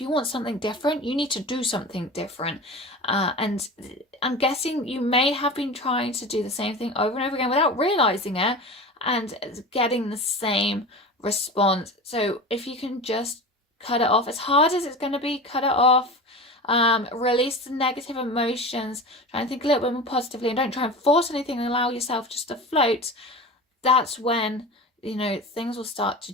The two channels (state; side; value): normal; both; correlation 0.31